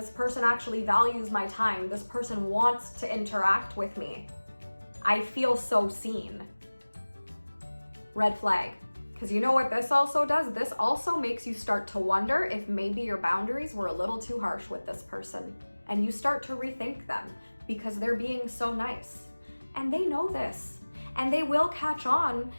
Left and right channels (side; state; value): both; inverted; correlation -1.00